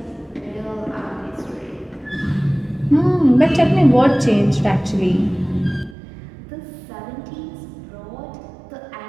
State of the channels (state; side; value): drops out; left; at 6.0 s